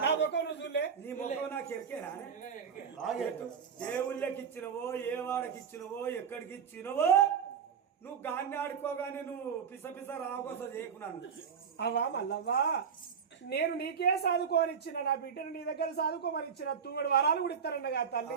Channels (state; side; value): quieter; left; 6.9 dB